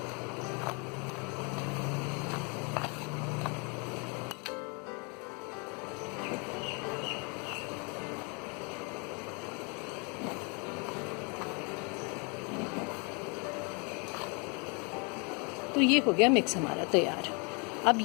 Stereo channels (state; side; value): quieter; right; 33.3 dB